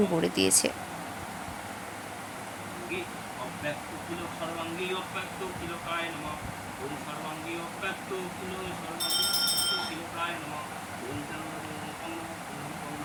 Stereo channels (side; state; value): both; identical; correlation 1.00